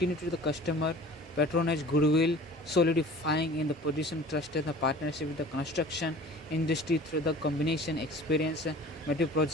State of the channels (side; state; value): both; normal; correlation 0.44